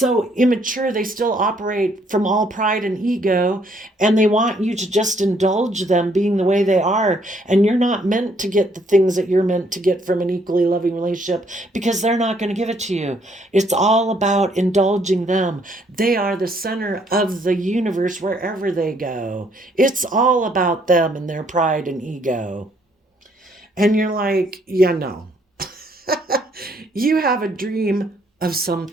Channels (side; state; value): both; normal; correlation 0.67